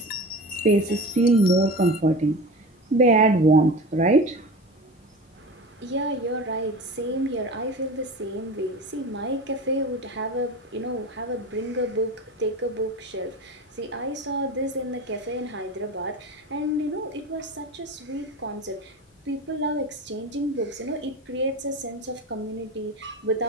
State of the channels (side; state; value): both; normal; correlation 0.31